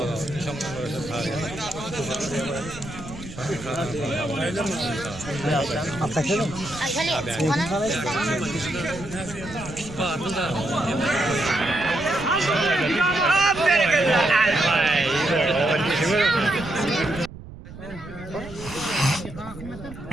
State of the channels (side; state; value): right; noise; rumble, 15 dB below the sound